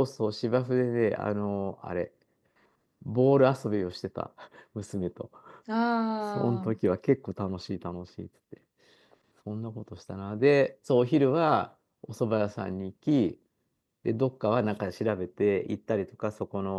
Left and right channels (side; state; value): both; identical; correlation 1.00